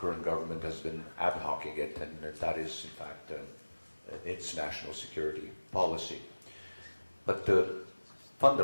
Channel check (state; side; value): inverted; both; correlation -1.00